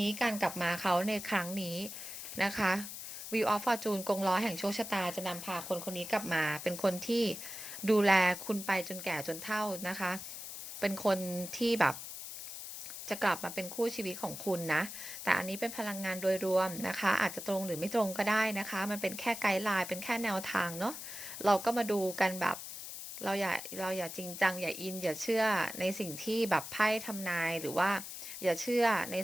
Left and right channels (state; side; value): noise; left; hiss, 9 dB below the sound